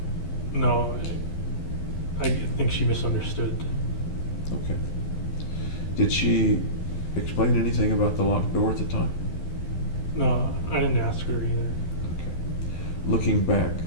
No, I think she misunderstood. Okay. Did she explain anything about the locked door at the time? No, I didn't ask her either. Okay. Looking back,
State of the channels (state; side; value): late; right; 12 ms